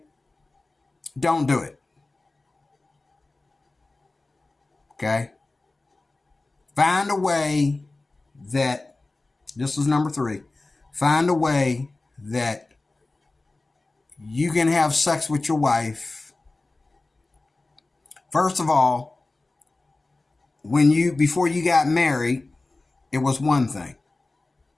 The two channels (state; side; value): quieter; right; 3.2 dB